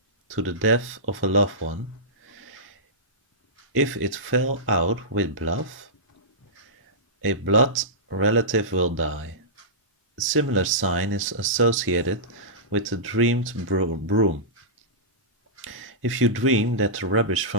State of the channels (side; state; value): both; normal; correlation -0.16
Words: to the death of a loved one, if it fell out with blood, a blood relative will die. A similar sign is associated with the dreamed broom. If you dream that the rubbish